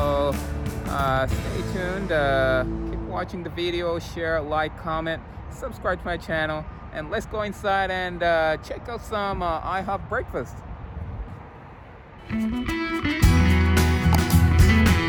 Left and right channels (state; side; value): identical; both; correlation 1.00